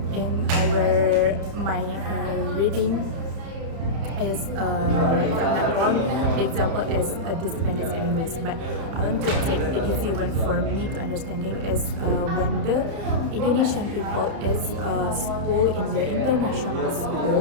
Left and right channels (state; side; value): late; left; 31 ms